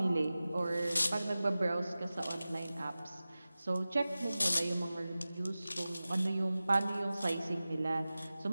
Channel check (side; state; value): both; inverted; correlation -0.96